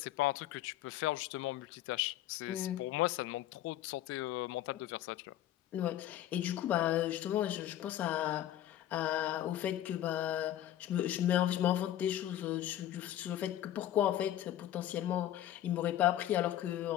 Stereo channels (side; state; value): right; quieter; 12.5 dB